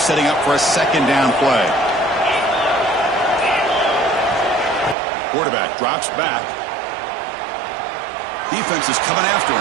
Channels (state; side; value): drops out; left; at 5.0 s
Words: setting up for a second down play. Quarterback drops back. Defense is coming after